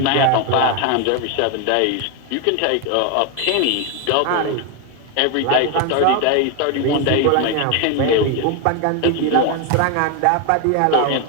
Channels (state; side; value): different; both; correlation 0.01